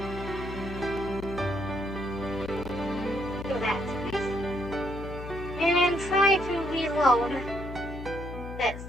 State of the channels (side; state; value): left; noise; hum, 9 dB below the sound